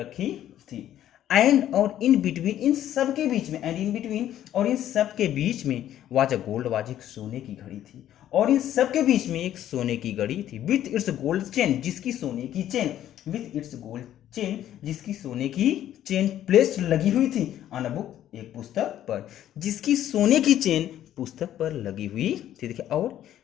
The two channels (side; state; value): right; quieter; 11.8 dB